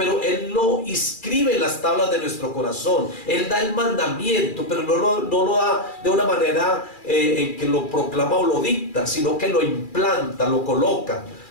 Él lo inscribe en las tablas de nuestro corazón. Él da el mandamiento, pero no lo da de una manera en que lo proclama o lo dicta, sino que lo implanta, lo coloca,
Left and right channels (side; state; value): right; late; 2.4 ms